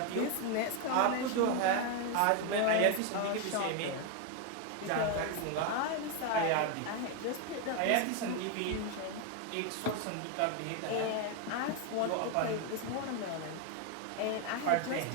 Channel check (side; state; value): both; different; correlation 0.01